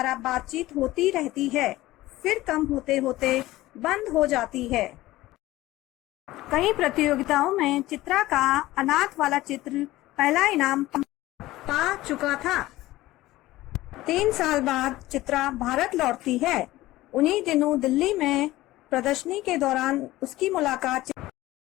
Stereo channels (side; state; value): right; quieter; 17.2 dB